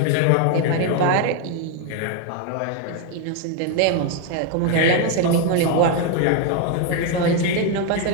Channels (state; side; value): different; both; correlation 0.01